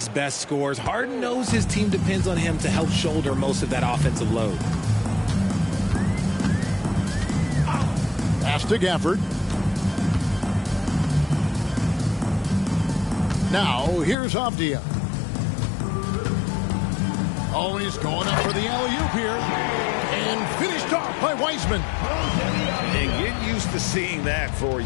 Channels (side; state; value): right; drops out; at 14.2 s